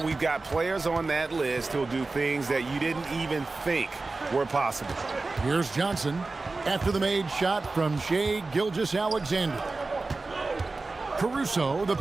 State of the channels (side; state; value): left; quieter; 3.6 dB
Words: We've got players on that list who'll do things that you didn't even think were possible. Here's Johnson after the made shot from Shai Gilgeous-Alexander. Caruso, the